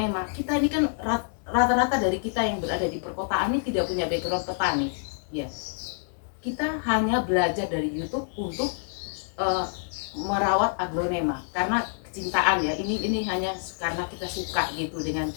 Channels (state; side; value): silent; right; digital silence